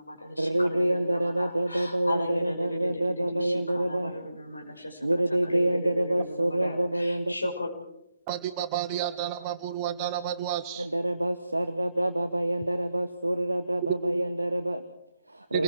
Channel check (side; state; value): both; inverted; correlation -0.89